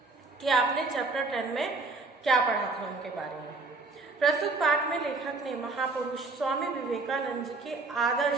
कि आपने चैप्टर 10 में क्या पढ़ा था उनके बारे में। प्रस्तुत पाठ में लेखक ने महापुरुष स्वामी विवेकानंद जी के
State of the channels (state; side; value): quieter; left; 3.6 dB